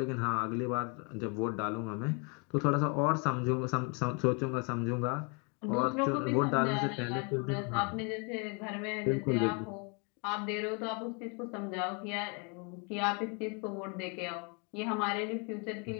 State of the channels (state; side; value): quieter; right; 34.7 dB